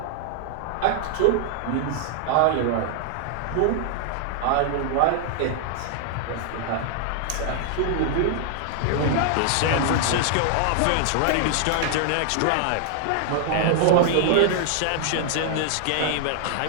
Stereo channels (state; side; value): different; both; correlation -0.01